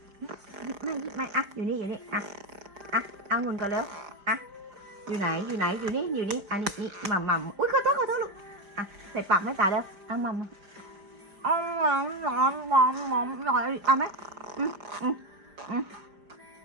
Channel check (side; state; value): left; late; 5.0 ms